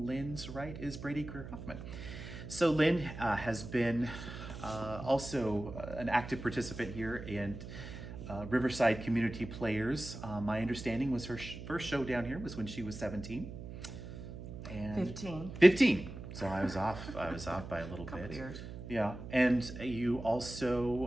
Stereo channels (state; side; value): noise; right; hum, 10 dB below the sound